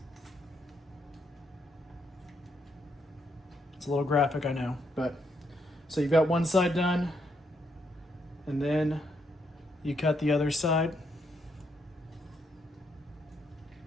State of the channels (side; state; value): both; normal; correlation 0.76